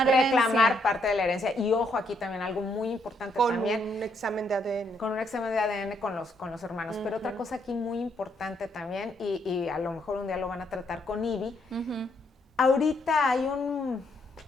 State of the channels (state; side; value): normal; both; correlation 0.74